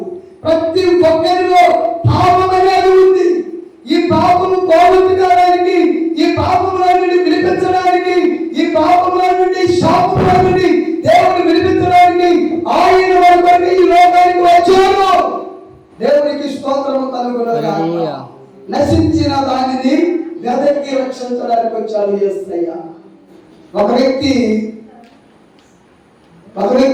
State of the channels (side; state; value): both; identical; correlation 1.00